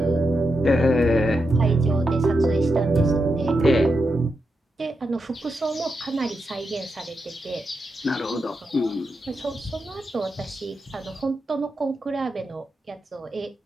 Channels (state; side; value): normal; both; correlation 0.86